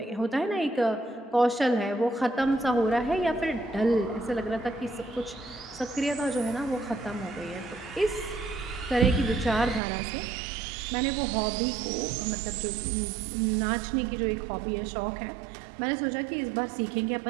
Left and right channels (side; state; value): left; drops out; at 9.8 s